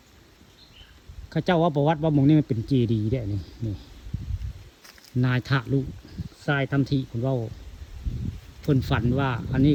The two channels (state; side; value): identical; both; correlation 1.00